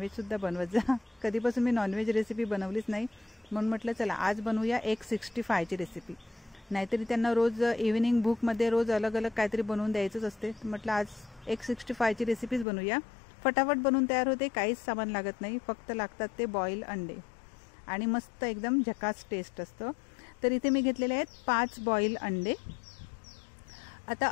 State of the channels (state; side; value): drops out; right; at 12.7 s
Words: सुद्धा बनवत जा। कधीपासून मी नॉनव्हेज रेसिपी बनवलीच नाही, म्हणून म्हटलं चला आज बनवूया एक 65 ची रेसिपी। नाहीतरी त्यांना रोज इव्हिनिंग बुक मध्ये रोज अलग अलग काहीतरी बनवून द्यायचंच असते। म्हटलं आज एक 65 ची रेसिपीज बनवूया। फटाफट बनवून तयार होते, काहीच सामान लागत नाही, फक्त लागतात ते बॉईल अंडे आणि मस्त एकदम झकास टेस्ट असतो। तर इथे मी घेतलेले आहेत 5 बॉईल अंडे। आता